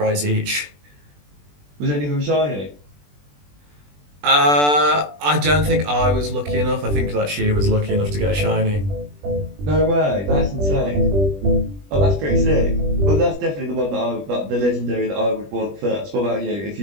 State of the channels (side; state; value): left; late; 20 ms